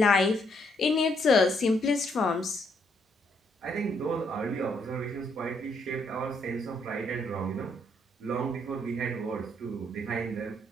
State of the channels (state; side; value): normal; both; correlation 0.72